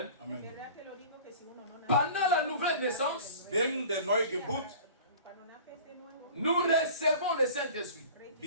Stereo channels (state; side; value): inverted; both; correlation -0.42